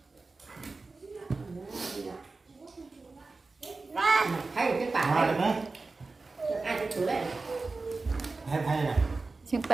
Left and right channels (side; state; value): left; quieter; 3.7 dB